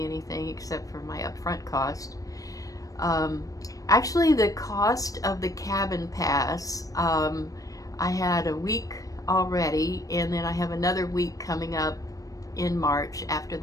anything except for my upfront cost. Actually, the cost of the cabin pass, I had a week already, and then I have another week coming up in March after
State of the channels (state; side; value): late; right; 0.17 ms